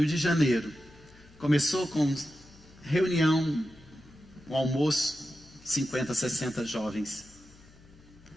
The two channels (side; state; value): left; noise; hum, 25 dB below the sound